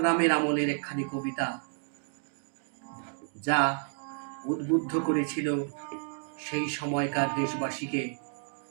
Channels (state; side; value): silent; left; 57 dB below the other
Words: আমলের একখানি কবিতা যা উদ্বুদ্ধ করেছিল সেই সময়কার দেশবাসীকে